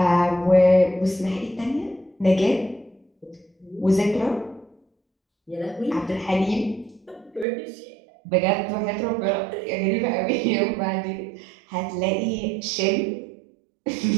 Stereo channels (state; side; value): drops out; left; at 7.5 s